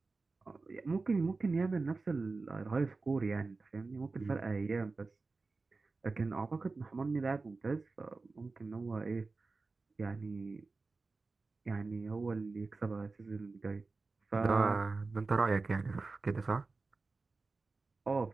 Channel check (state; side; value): quieter; left; 3.8 dB